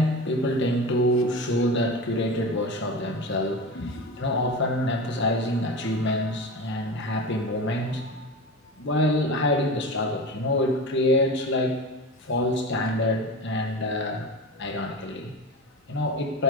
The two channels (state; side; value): normal; both; correlation 0.28